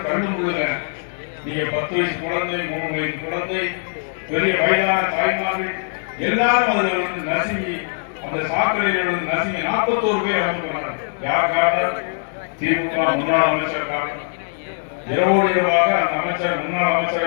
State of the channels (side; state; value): right; silent; 65 dB below the other